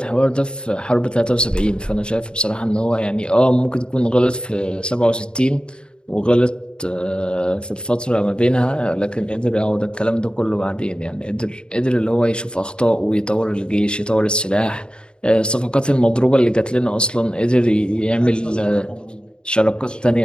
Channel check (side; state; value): right; late; 0.051 ms